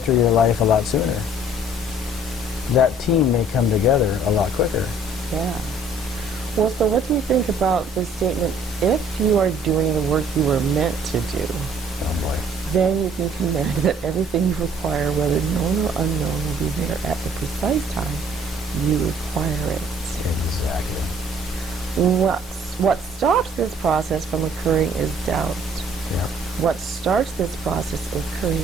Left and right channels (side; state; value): both; normal; correlation 0.58